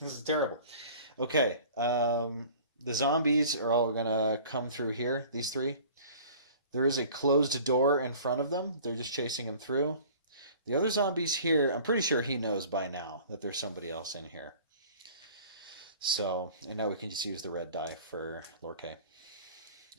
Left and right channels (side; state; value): both; inverted; correlation -0.46